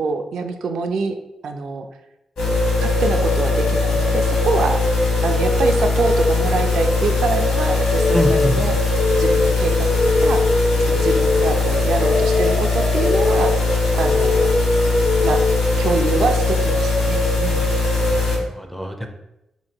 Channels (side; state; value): both; normal; correlation 0.79